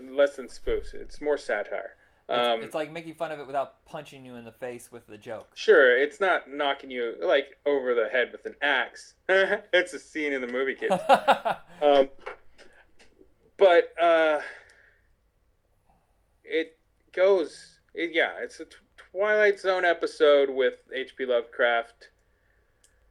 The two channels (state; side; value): identical; both; correlation 1.00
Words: less than spoofs. It's more satire. It's like making fun of it without punching you in the face with the joke. Sure, it's not knocking you like over the head with an axe. It's a scene in the movie, kids. But it goes. It's a Twilight Zone episode with H.P. Lovecraft